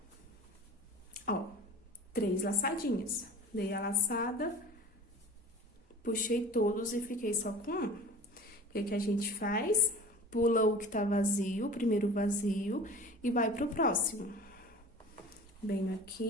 Ó, 3 laçadinhas. Dei a laçada, puxei todos e fiquei só com um. O que que a gente faz? Pula o que tá vazio, o primeiro vazio, e vai pro próximo. Venho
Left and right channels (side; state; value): both; normal; correlation 0.40